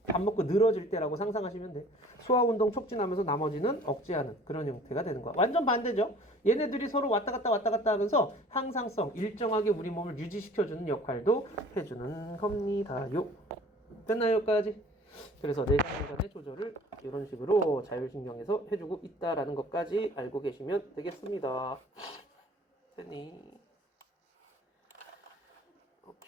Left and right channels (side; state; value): both; normal; correlation 0.49